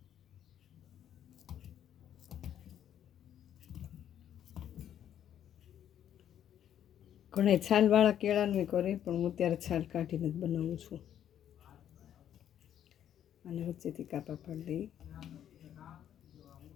ઘણા છાલવાળા કેળાનું કરે, પણ હું ત્યારે છાલ કાઢીને જ બનાવું છું. અને વચ્ચેથી કાપા પાડી દઈ.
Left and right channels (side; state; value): right; quieter; 10.2 dB